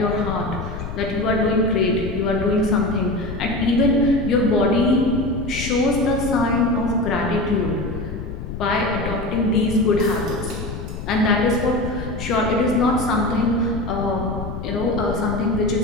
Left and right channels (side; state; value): left; noise; rumble, 7 dB below the sound